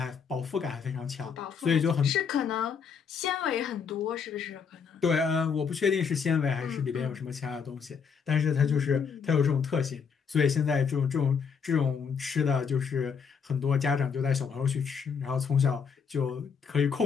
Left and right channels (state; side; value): quieter; right; 6.3 dB